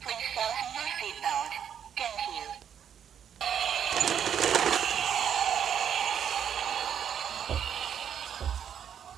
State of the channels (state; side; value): quieter; left; 8.7 dB